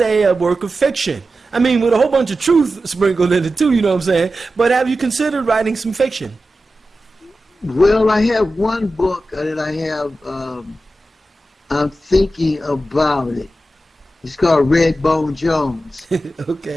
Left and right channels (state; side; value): normal; both; correlation 0.92